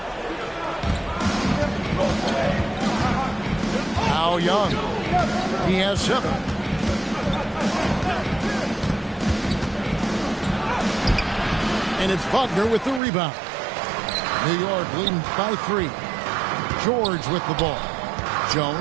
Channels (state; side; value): drops out; left; at 13.0 s